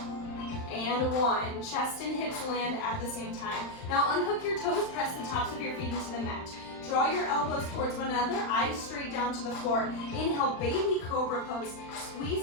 and 1. Chest and hips land at the same time. Now unhook your toes, press the tops of your feet into the mat. Draw your elbows towards one another, eyes straight down to the floor. Inhale, baby cobra pose.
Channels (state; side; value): late; right; 39 ms